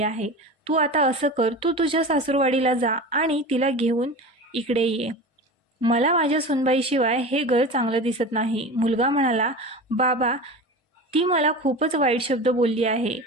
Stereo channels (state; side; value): normal; both; correlation 0.31